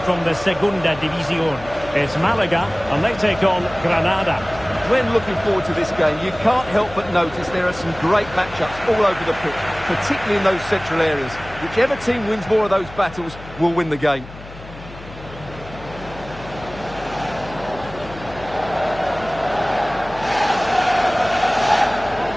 from the Segunda División. It's Malaga, and they take on Granada. When looking forward to this game, you can't help but notice there are some great matchups all over the pitch, particularly in those central areas. Whichever team wins more of those battles will win the game.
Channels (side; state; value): left; noise; hum, 16 dB below the sound